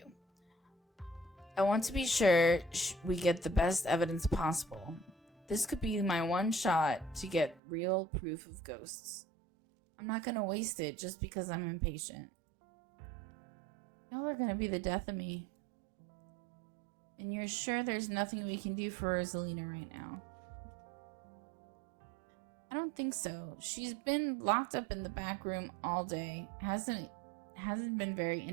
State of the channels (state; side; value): drops out; left; at 7.6 s